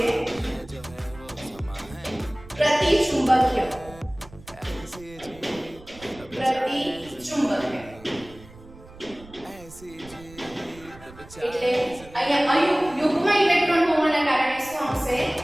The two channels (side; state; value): right; noise; rumble, 20 dB below the sound